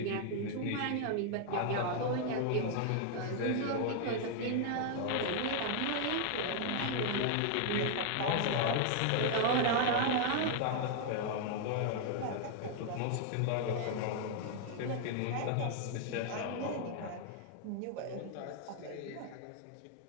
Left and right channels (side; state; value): both; different; correlation 0.00